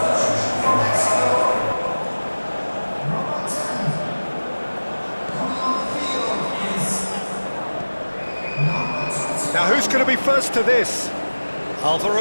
Now who's going to be first to this?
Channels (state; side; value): inverted; both; correlation -1.00